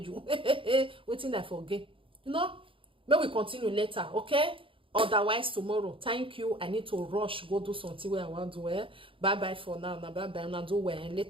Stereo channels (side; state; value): left; late; 0.25 ms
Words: you. Waiting I forget. You know, may we continue later, okay? Otherwise tomorrow. Thank you. I need to rush go do something where I want to wear. Bye bye for now. Bye bye. And I'll do wear